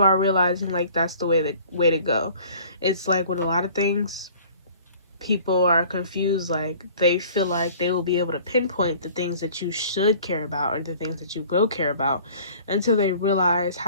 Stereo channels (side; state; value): both; inverted; correlation -0.50